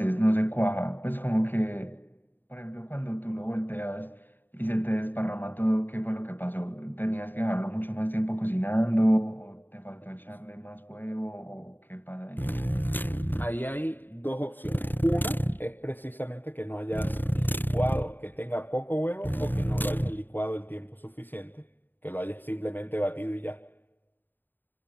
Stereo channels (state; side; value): late; right; 0.092 ms